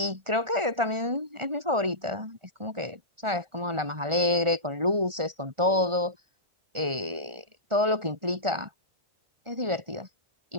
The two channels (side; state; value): left; late; 1.4 ms